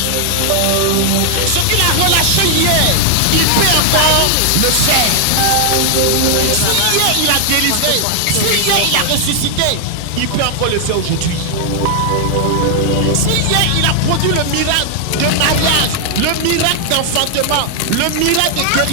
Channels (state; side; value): different; both; correlation 0.00